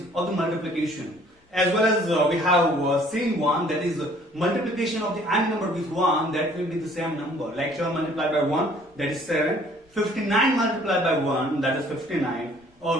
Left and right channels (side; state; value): both; normal; correlation 0.57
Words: of the multiplication, as well as we have seen one, that is multiplication of the any number with 1, that will be the same number. Like 7 multiplied by 1, that is 7. 59 multiplied by 1, that is 59.